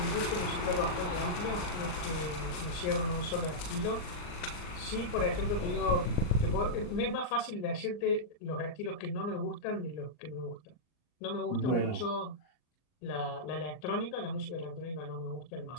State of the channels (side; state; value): right; late; 39 ms